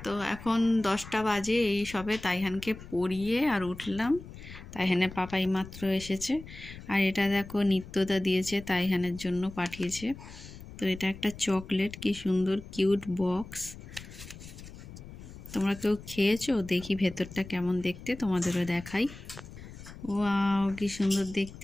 তো এখন 10টা বাজে, এই সবে তাইহানকে পড়িয়ে আর উঠলাম। তাইহানের পাপা এই মাত্র এসেছে। আর এটা দেখো নিত্যদা দিয়েছে, তাইহানের জন্য পাঠিয়েছে। তো এটা একটা চকলেট, কি সুন্দর কিউট বক্স। তোমরা কেউ খেয়েছো? দেখি ভেতরটা কেমন দেখতে, তোমাদেরও দেখাই। ওয়াও কি সুন্দর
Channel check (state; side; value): noise; left; rumble, 15 dB below the sound